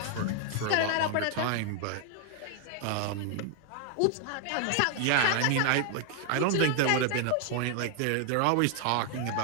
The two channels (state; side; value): different; both; correlation 0.00